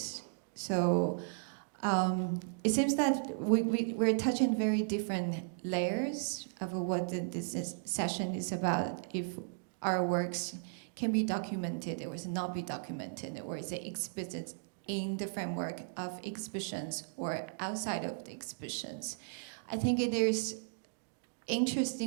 So it seems that we're touching very different layers of what this session is about. If our works can be documented or not be documented, or is it exhibited in the framework of exhibitions or outside of the exhibitions. I think there's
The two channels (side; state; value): left; silent; digital silence